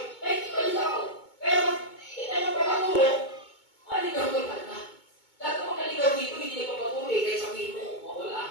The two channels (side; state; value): right; late; 2.2 ms